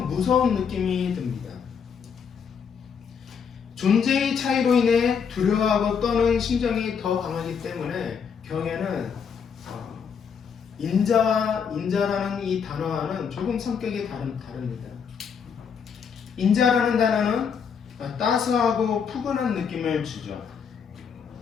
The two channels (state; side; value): quieter; right; 6.7 dB